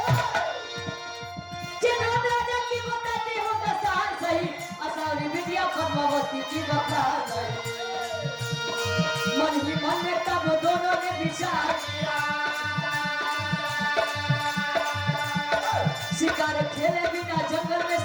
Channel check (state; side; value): identical; both; correlation 1.00